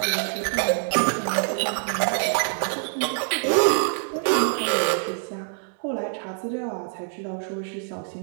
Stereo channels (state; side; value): silent; left; digital silence